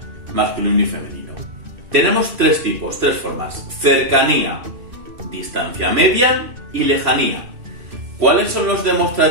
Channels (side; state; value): left; late; 3.0 ms